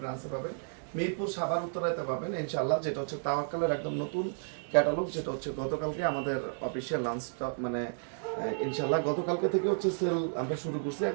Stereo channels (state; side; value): silent; left; digital silence